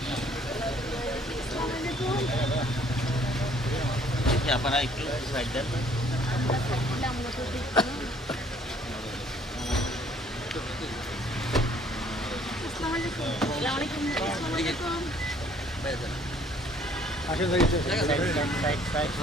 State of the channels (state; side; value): normal; both; correlation 0.60